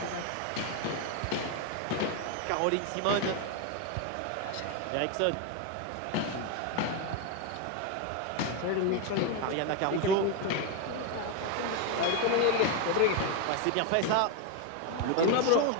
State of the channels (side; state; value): both; different; correlation 0.01